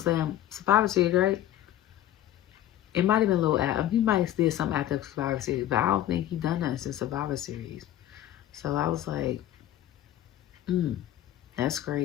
Survivor Series, right? It might have been a little after. He might have did something after Survivor Series. But I don't think he done nothing since Survivor Series. So I was like, that's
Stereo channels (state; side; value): quieter; right; 12.6 dB